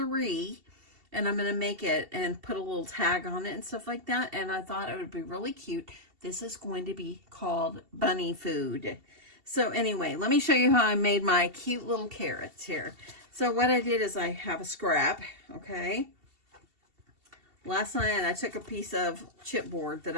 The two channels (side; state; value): left; late; 2.7 ms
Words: and I'm going to make it and put a little tag on it and stuff like that. And I thought it would be really cute. This is going to be called bunny food. So anyway, let me show you how I made my cute little carrots here. So what I did is I have a scrap, okay? Last night I took a piece of chipboard that